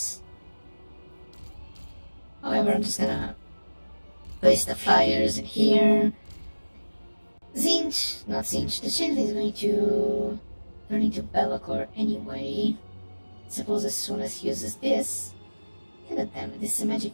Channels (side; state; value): both; inverted; correlation -1.00